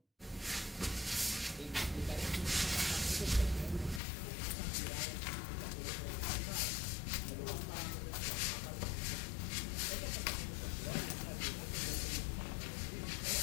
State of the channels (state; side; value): drops out; right; at 4.0 s